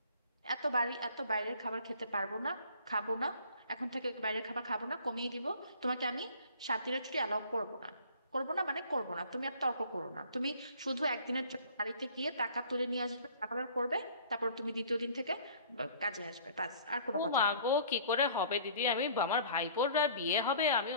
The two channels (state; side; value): inverted; both; correlation -0.50